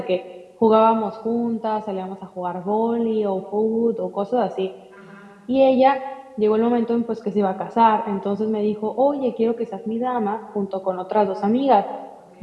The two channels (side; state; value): both; identical; correlation 1.00